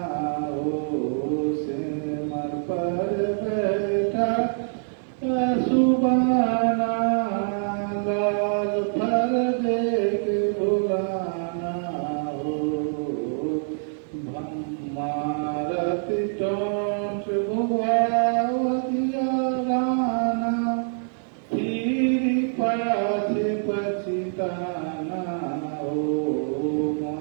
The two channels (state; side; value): silent; left; 56 dB below the other